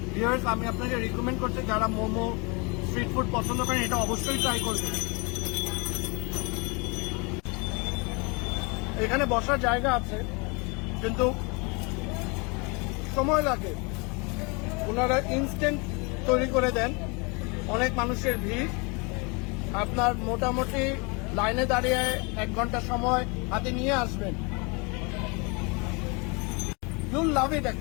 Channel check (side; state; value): right; quieter; 30.2 dB